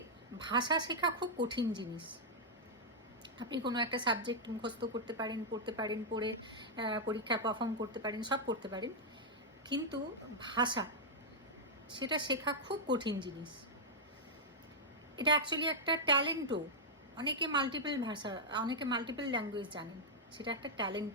ভাষা শেখা খুব কঠিন জিনিস। আপনি কোনো একটা সাবজেক্ট মুখস্থ করতে পারেন, পড়তে পারেন, পড়ে পরীক্ষায় পারফর্ম করতে পারেন, সব করতে পারেন, কিন্তু ভাষা, সেটা শেখা খুব কঠিন জিনিস। এটা অ্যাকচুয়ালি একটা ট্যালেন্টও। অনেকে মাল্টিপল ল্যাঙ্গুয়েজ জানেন, সেটা একটা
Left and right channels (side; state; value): both; normal; correlation -0.05